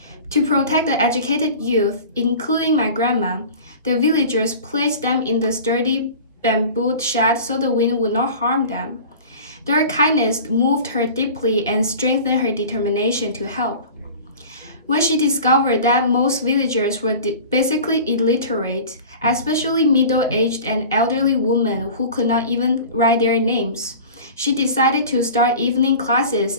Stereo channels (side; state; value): both; inverted; correlation -0.39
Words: To protect the educated youth, including my grandma, the villagers placed them in the sturdy bamboo shed so the wind would not harm them. Their kindness moved her deeply and strengthened her determination to help. When she discovered that most villagers were basically illiterate, especially middle-aged and elderly women who could not even write their names, she decided to start evening classes